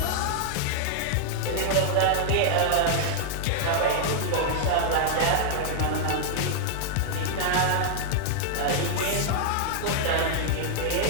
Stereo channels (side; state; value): both; different; correlation -0.01